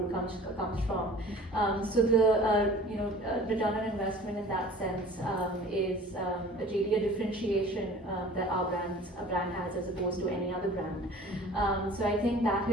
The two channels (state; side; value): normal; both; correlation 0.46